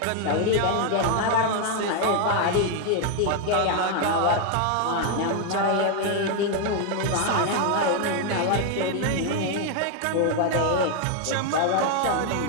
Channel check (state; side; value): different; both; correlation 0.00